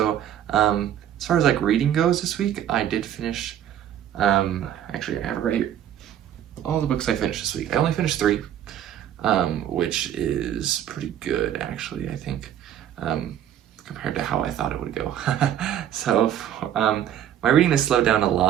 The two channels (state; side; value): quieter; left; 10.5 dB